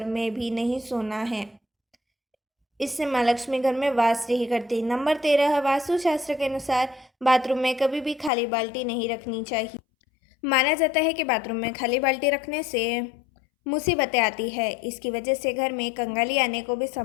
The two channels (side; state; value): right; drops out; at 8.3 s